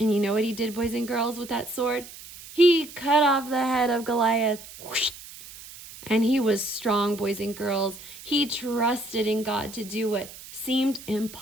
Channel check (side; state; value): right; noise; hiss, 16 dB below the sound